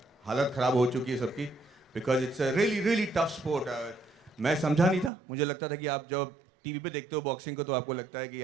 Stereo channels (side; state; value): left; drops out; at 5.1 s